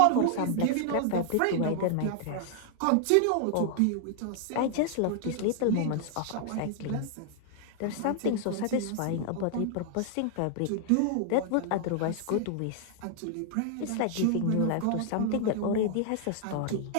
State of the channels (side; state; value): both; different; correlation 0.00